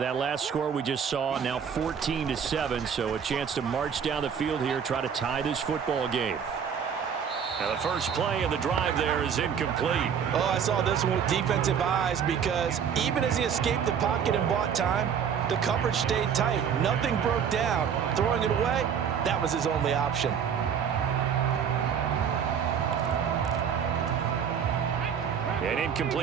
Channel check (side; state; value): left; quieter; 7.6 dB